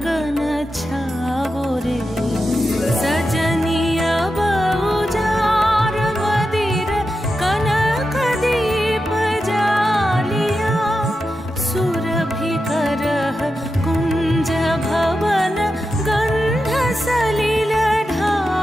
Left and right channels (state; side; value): normal; both; correlation 0.89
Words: छाओ रे सजनिया बहुजार मदिर कनक दीप जालिया सुरभि करह कुंज भवन गंध सलिल